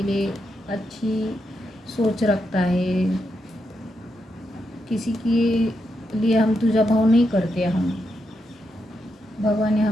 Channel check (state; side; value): normal; both; correlation 0.83